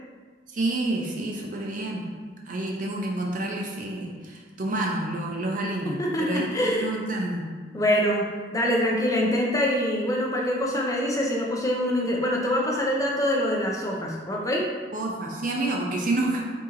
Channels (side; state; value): both; normal; correlation 0.52